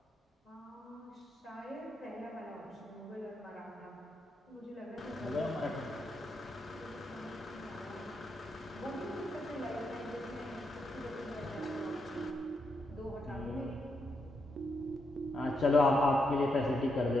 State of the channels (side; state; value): both; normal; correlation 0.81